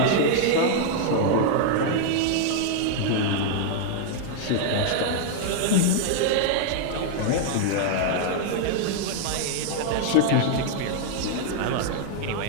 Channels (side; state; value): both; different; correlation 0.00